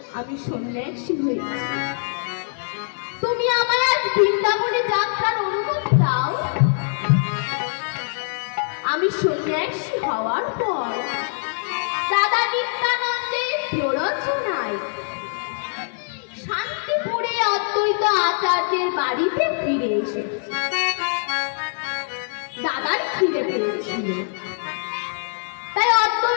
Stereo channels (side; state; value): right; silent; digital silence